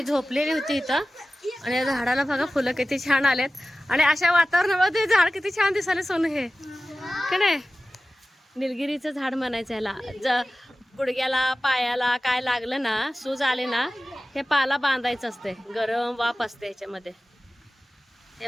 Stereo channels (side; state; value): both; normal; correlation 0.96